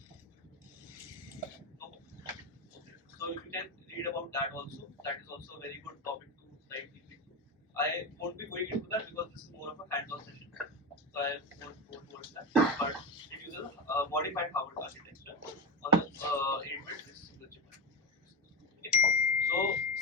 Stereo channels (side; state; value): both; normal; correlation 0.20